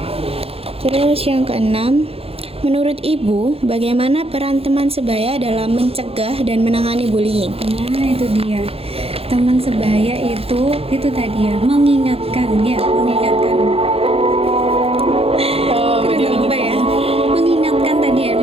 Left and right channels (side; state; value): left; late; 0.28 ms